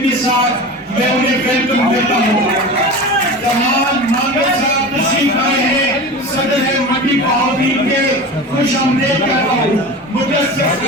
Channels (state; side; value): normal; both; correlation 0.31